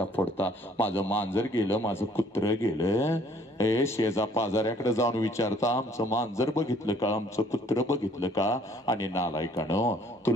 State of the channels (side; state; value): both; normal; correlation 0.60